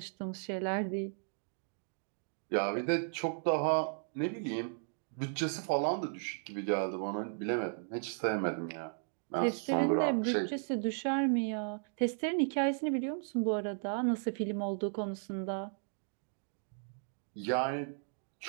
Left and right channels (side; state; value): left; silent; digital silence